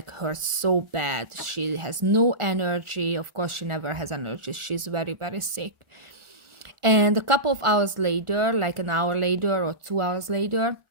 hurts so bad. She has no energy. Of course, she never has energy. She's very, very sick. And a couple of hours later, like an hour later or 2 hours later,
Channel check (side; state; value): left; late; 1.4 ms